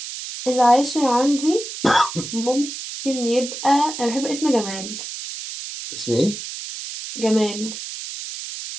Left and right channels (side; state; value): right; noise; hiss, 9 dB below the sound